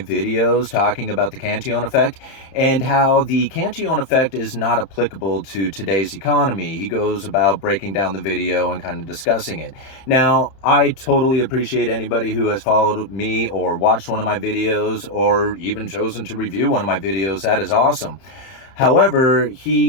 talking about the Cantillon effect and how the Cantillon effect is not applicable to today's economy. He goes about breaking down the video and kind of discussing it. Now, I totally appreciate anybody who has followed me or watched one of my videos or even chosen to review one of my videos. That is awesome. However,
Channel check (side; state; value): right; late; 31 ms